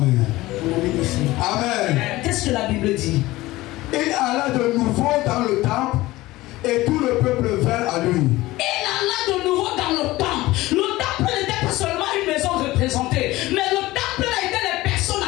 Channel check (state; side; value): quieter; right; 18.4 dB